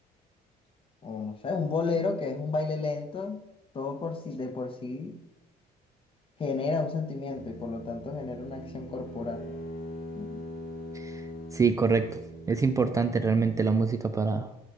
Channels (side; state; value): both; normal; correlation 0.68